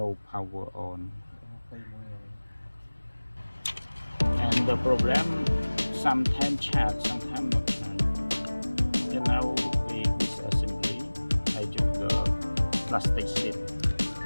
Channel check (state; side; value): inverted; both; correlation -1.00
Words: power on. And the problem, sometimes chat, sometimes not chat. And now with disassembly, I use the plastic sheet